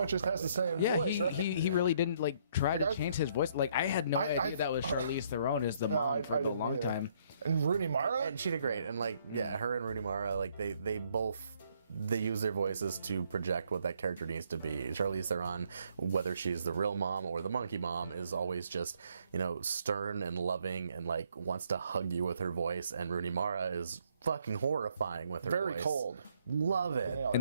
just has the same yeah, voice, right? he really didn't like try to I- change his voice. Like I had no I- idea that was Charlize Theron as the No, mom for a didn't long either. time. And Rooney Mara? And she did great. And like, yeah, her and Rooney Mara, like they both they use their voices to project what that character needs to be. Charlize Theron, whether she's the real mom or the monkey mom, is always just, you know, stern and loving and like wants to hug you with her voice. And Rooney Mara is fucking horrifying with her Very voice. cold. Love it. Yeah.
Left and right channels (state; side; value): inverted; both; correlation -0.68